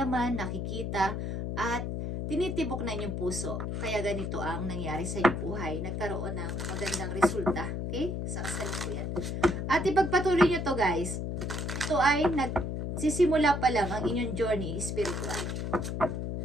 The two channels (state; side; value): noise; left; hum, 3 dB below the sound